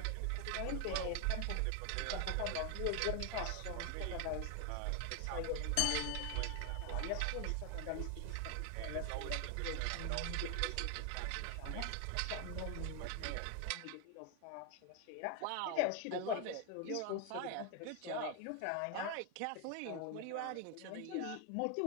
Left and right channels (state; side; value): different; both; correlation 0.01